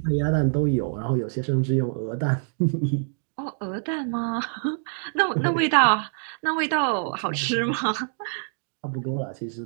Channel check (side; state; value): left; silent; digital silence